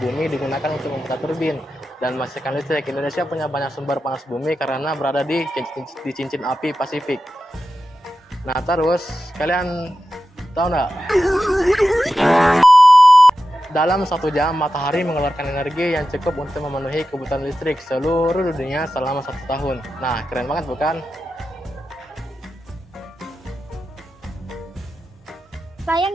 digunakan untuk memutar turbin dan menghasilkan listrik. Indonesia punya banyak sumber panas bumi karena berada di cincin api Pasifik. Nah terus, kalian tahu nggak? Dalam 1 jam, matahari mengeluarkan energi yang cukup untuk memenuhi kebutuhan listrik seluruh dunia selama 1 tahun. Nah, keren banget bukan?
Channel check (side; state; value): both; normal; correlation 0.91